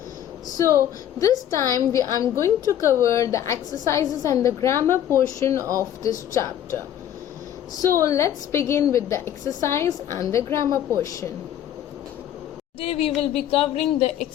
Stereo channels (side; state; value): right; quieter; 10.7 dB